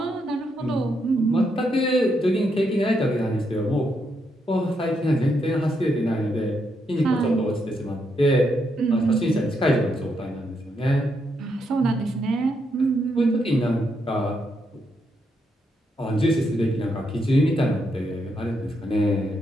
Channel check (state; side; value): normal; both; correlation 0.79